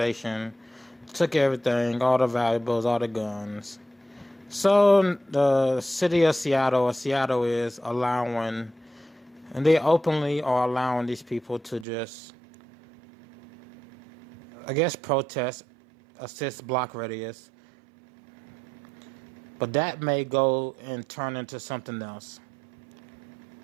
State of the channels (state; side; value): drops out; left; at 11.9 s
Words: took everything, all the valuables, all the guns. So the city of Seattle, or Seattle, is allowing, and they openly are allowing these people to just, I guess, protest a 6-block radius. But that may go and turn into something else.